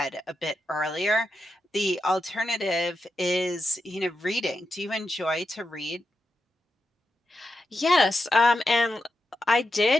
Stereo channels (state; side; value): normal; both; correlation 0.87